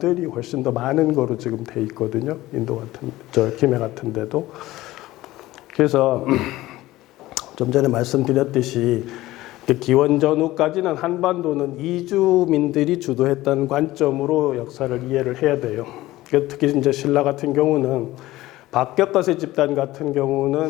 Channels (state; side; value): quieter; right; 17.0 dB